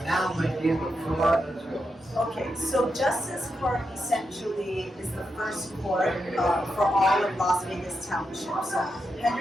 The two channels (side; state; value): both; normal; correlation 0.85